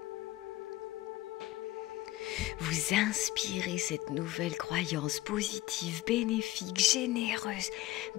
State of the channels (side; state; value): right; quieter; 17.3 dB